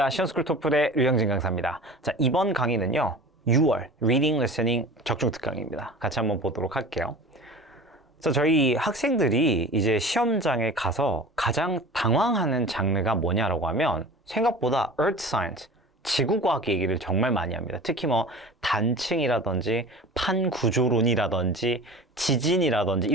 시험스쿨 토플의 류영진 강사입니다. 자, 이번 강의는요, 6월 Reading, Listening 적중 특강입니다. 같이 한번 보도록 할게요. 자, 저희 학생들이 이제 시험장에 가서 가장 당황하는 장르가 뭐냐라고 하면 생각보다 Earth Science, 지구과학 얘기를 정말 많이 합니다. 특히 뭐 단층이라든지 판구조론이라든지 지진이라든지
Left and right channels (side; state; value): both; normal; correlation 0.37